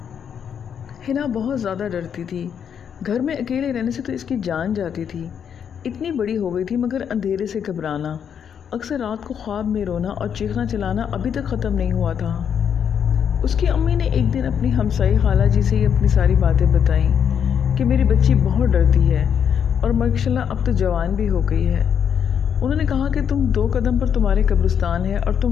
ہنا بہت زیادہ ڈرتی تھی۔ گھر میں اکیلے رہنے سے تو اس کی جان جاتی تھی۔ اتنی بڑی ہو گئی تھی مگر اندھیرے سے گھبرانا، اکثر رات کو خواب میں رونا اور چیخنا چلانا ابھی تک ختم نہیں ہوا تھا۔ اس کی امی نے ایک دن اپنی ہمسائی خالہ جی سے اپنی ساری باتیں بتائیں کہ میری بچی بہت ڈرتی ہے اور ماشاءاللہ اب تو جوان بھی ہو گئی ہے۔ انہوں نے کہا کہ تم 2 قدم پر تمہارے قبرستان ہے اور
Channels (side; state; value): right; quieter; 8.0 dB